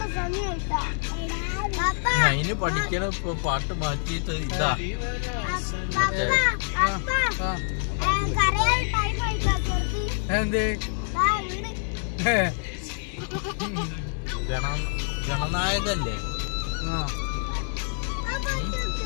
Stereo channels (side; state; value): right; silent; 58 dB below the other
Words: അതിന് പഠിക്കണ ഇപ്പൊ പാട്ട് മാറ്റിയിട്ട് ഇതാ എന്തേ ഗണനായകല്ലേ